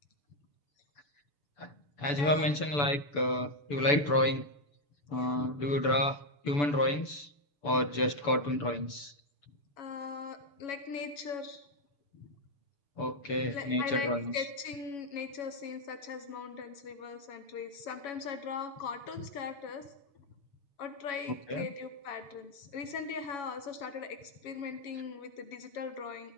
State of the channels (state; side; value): late; right; 6.9 ms